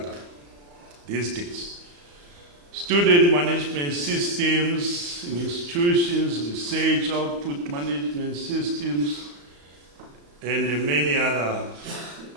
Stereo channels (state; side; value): late; left; 35 ms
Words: these days. Student management systems in institutions, research output management systems, and many other